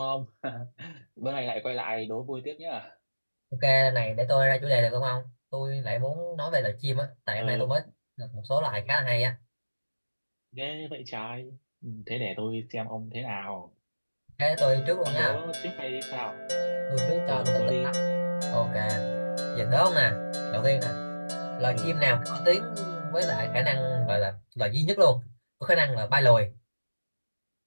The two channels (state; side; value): inverted; both; correlation -1.00